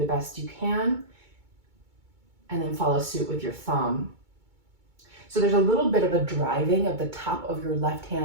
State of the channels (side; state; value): left; late; 2.2 ms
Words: best you can, and then follow suit with your thumb. So there's a little bit of a driving of the top of your left